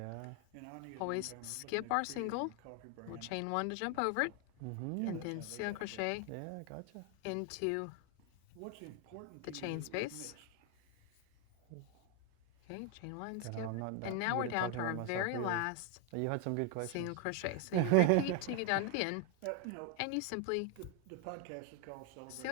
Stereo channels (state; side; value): different; both; correlation 0.01